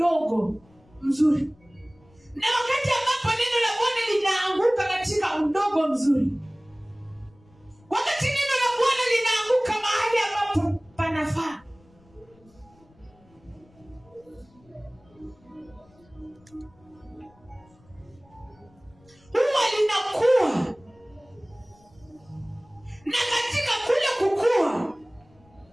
mzuri. Na wakati ambapo neno la Bwana linaanguka katika udongo mzuri, wakati neno la Bwana linaanguka mahali ambapo panafaa, huwa linakuwa. Na katika kule kukua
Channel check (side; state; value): left; noise; rumble, 30 dB below the sound